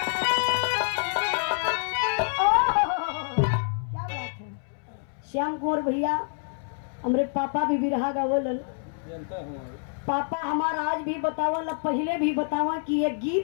श्याम कुंवर भैया हमारे पापा भी बिरहा गावलन। पापा हमारा आज भी बतावल, पहले भी बतावा कि ये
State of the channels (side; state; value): right; silent; 60 dB below the other